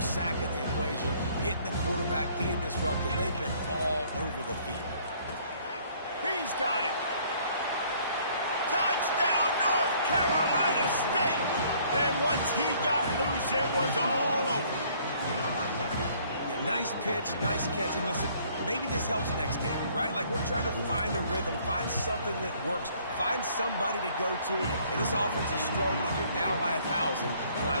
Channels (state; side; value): inverted; both; correlation -0.60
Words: sack in the equation, hitting the quarterback, being disruptive. They've been all over the field. He's got it. Touchdown, North Carolina State. And once he got loose, it was all over. Yeah, nice pitch, nice catch, and listen, maybe this helps next game, right? Like, we're trying to find a rhythm, find something that works, find somebody to go to, and this offense is struggling. You're down by 1,000, but I